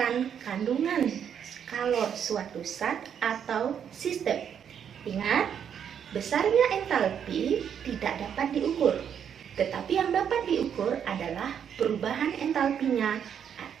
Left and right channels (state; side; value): quieter; left; 8.3 dB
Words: kandungan kalor suatu zat atau sistem. Ingat, besarnya entalpi tidak dapat diukur. Tetapi yang dapat diukur adalah perubahan entalpinya